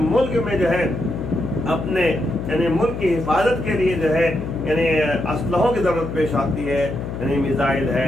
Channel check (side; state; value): left; noise; hum, 6 dB below the sound